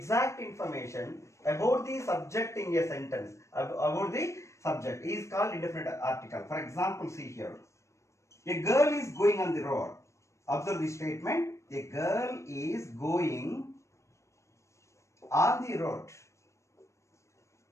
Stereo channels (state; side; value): late; right; 0.14 ms